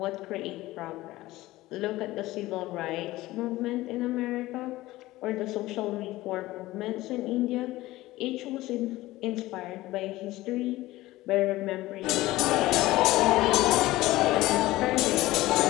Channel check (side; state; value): right; quieter; 17.7 dB